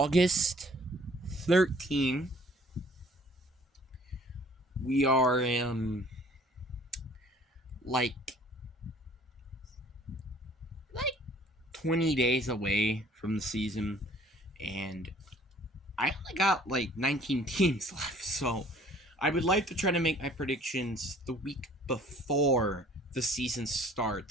13. We are like like 20 days away from the season, and I only got like 19 teams left, so I would like to try to make my predictions the week before the season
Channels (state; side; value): normal; both; correlation 0.54